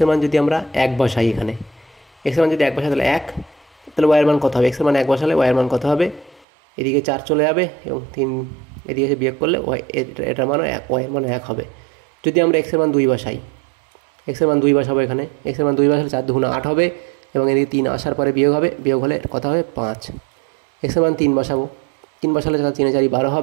মান যদি আমরা এক বসাই, এখানে এক্সের মান যদি এক বসাই তাহলে এক, তাহলে ওয়াইয়ের মান কত হবে? এক্সের মান এক বসালে ওয়াইয়ের মান কত হবে? এদিকে 4 চলে যাবে এবং 3 এদিকে এসে বিয়োগ করলে ওয়াই এটার মানও ওয়াইয়ের মান 1 হবে। যদি আমরা এক্সের মান 2 বসাই, এক্সের মান 2 বসাবো, এখানে এক্সের মান 2 বসালে 4 দুগুণে 8 হবে এবং এদিকে 3 আসার পরে বিয়োগ হবে, বিয়োগ হলে কত হবে? 5। এক্সের মান 3 বসাবো, 3 বসালে 3 4 12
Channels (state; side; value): drops out; left; at 6.5 s